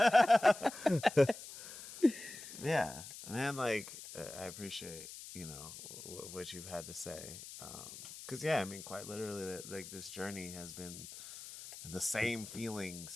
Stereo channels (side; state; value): left; noise; hiss, 13 dB below the sound